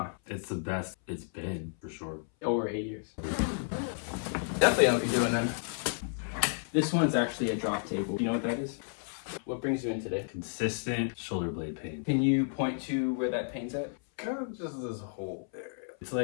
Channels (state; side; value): silent; right; 56 dB below the other